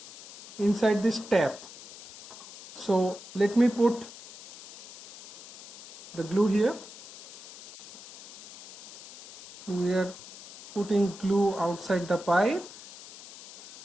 inside this tap. So let me put the glue here. So we are putting glue outside the pipe,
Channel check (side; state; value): left; noise; hiss, 17 dB below the sound